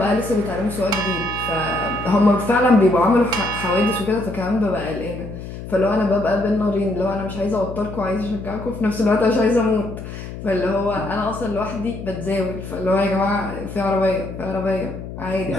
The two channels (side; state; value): left; noise; hum, 10 dB below the sound